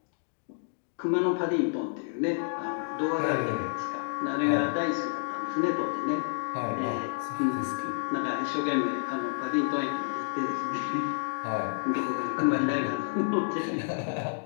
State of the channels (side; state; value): right; silent; digital silence